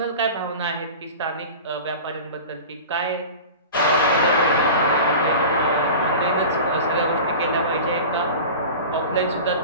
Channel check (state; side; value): inverted; both; correlation -0.34